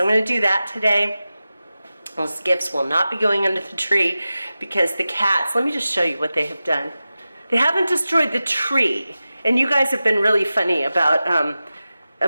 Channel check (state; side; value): inverted; both; correlation -0.94